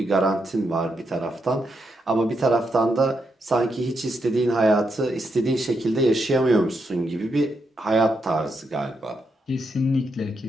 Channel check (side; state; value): both; normal; correlation 0.81